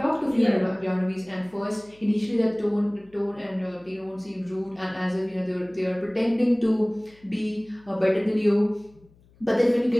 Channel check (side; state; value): left; noise; hum, 29 dB below the sound